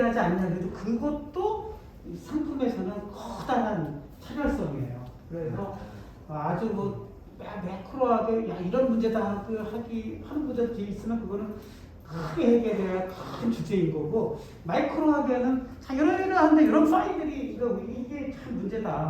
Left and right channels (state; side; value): identical; both; correlation 1.00